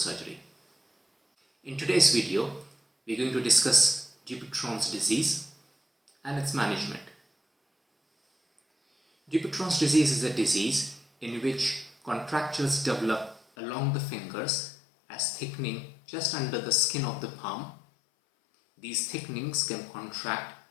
In today's video, we're going to discuss Dupuytren's disease and its management. Dupuytren's disease is a disease in which contractures develop along the fingers as thickening just under the skin of the palm. These thickenings can contract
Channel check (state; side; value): drops out; right; at 13.4 s